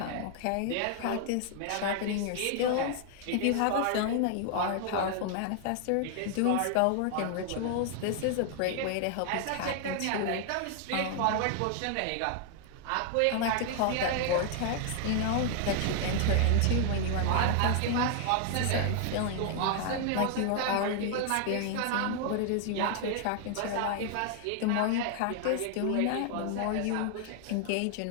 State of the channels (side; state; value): both; different; correlation 0.00